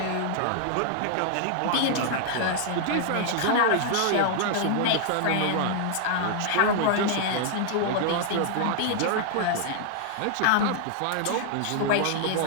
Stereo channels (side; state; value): both; different; correlation 0.00